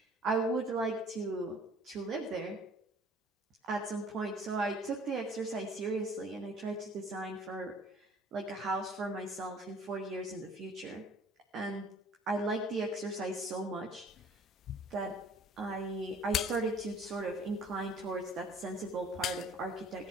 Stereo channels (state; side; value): normal; both; correlation 0.53